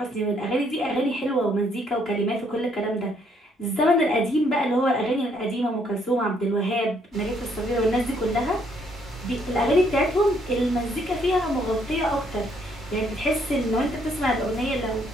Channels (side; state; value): both; normal; correlation 0.69